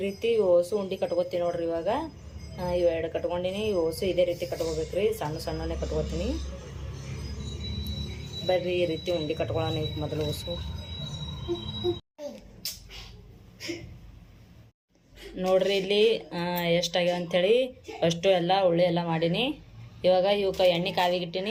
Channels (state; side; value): identical; both; correlation 1.00